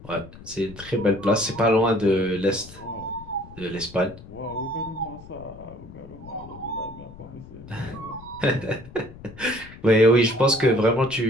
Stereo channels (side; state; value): left; noise; rumble, 18 dB below the sound